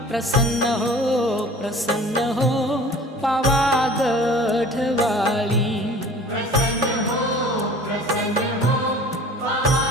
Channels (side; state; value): both; normal; correlation 0.45